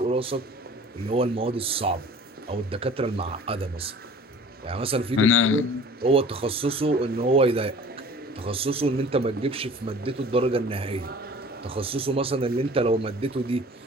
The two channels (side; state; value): both; normal; correlation 0.45